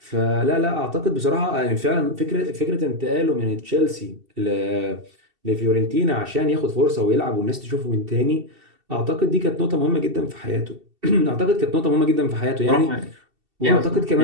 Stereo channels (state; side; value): late; left; 2.7 ms